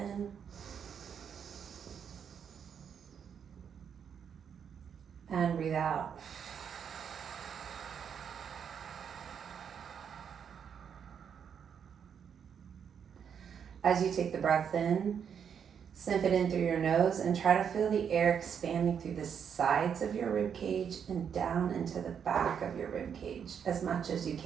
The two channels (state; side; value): quieter; left; 7.6 dB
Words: And breathe out. As you take the breath in, sniff it in through your nose and try to feel the air expanding through the sides of your rib cage and down into the back of your rib cage as much as you